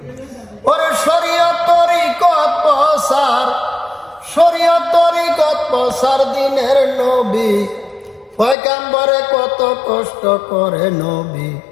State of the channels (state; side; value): drops out; right; at 8.6 s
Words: ওরে শরীয়ত তরিকত প্রচার, শরীয়ত তরিকত প্রচার দিনের নবী পয়গাম্বরে কত কষ্ট করে নবী,